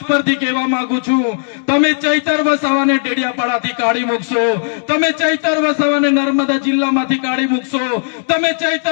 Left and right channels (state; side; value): silent; right; digital silence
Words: પરથી કહેવા માંગુ છું, તમે ચૈતર વસાવાને ડેડિયાપાડાથી કાઢી મૂકશો, તમે ચૈતર વસાવાને નર્મદા જિલ્લામાંથી કાઢી મૂકશો, તમે